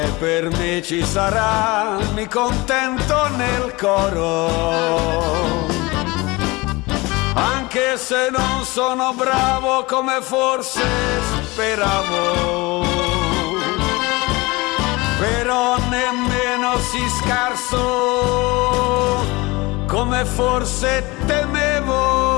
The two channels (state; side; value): quieter; right; 23.1 dB